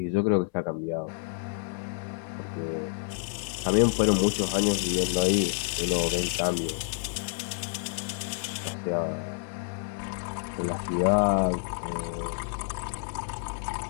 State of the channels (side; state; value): right; silent; 59 dB below the other